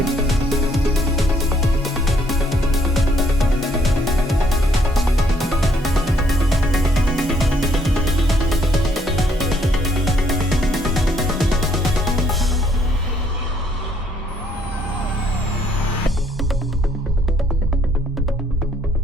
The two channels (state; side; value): normal; both; correlation 0.67